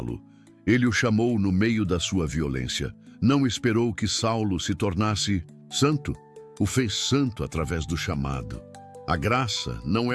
Ele o chamou no meio da sua violência. Não esperou que Saulo se tornasse santo. O fez santo através do chamado. A graça não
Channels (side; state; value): both; identical; correlation 1.00